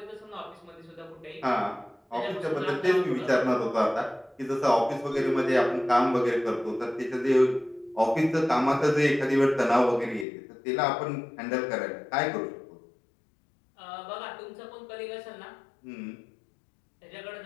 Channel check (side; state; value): right; drops out; at 10.2 s